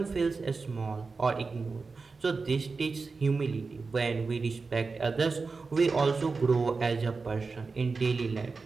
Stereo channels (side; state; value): left; quieter; 4.3 dB